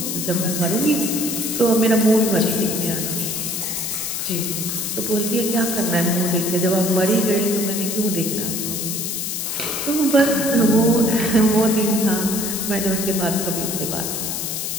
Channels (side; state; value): left; noise; hiss, 3 dB below the sound